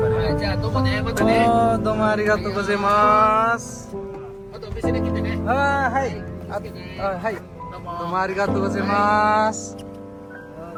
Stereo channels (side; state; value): both; identical; correlation 1.00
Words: いじゃあどうもねまたねおーどうもありがとうございますあとお店で来てねあーはいはいどうもどうもありがとうございます